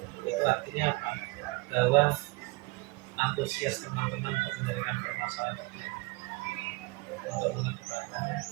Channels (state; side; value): quieter; left; 24.0 dB